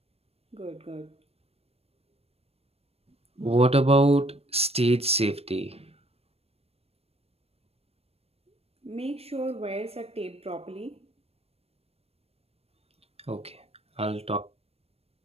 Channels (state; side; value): late; left; 0.29 ms